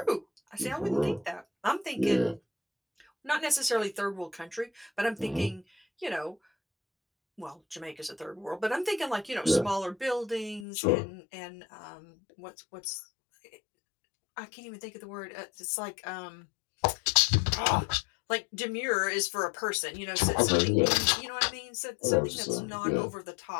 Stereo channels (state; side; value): drops out; right; at 10.7 s